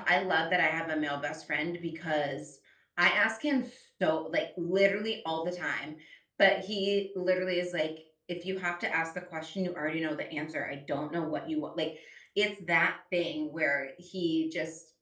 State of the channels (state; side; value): identical; both; correlation 1.00